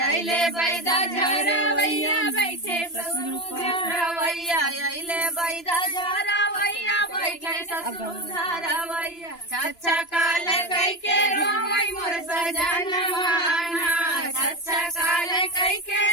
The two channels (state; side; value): late; right; 2.9 ms